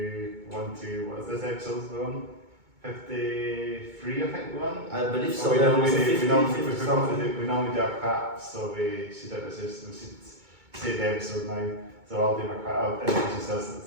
what is this episode on? 53, I think we're on. I believe so. We normally do our clap, so we should say the episode now. So I'll do my clap. I'll introduce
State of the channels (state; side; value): late; left; 2.2 ms